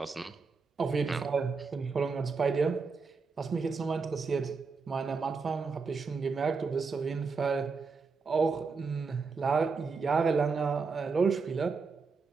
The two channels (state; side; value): quieter; left; 4.8 dB